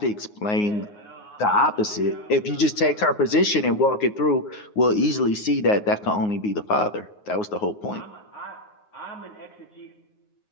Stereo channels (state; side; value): late; right; 9.6 ms